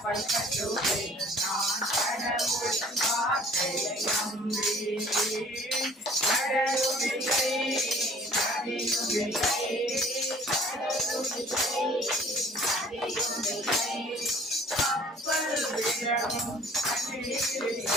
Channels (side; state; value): both; normal; correlation 0.52